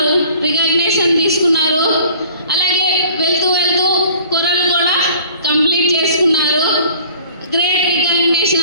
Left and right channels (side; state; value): both; inverted; correlation -0.49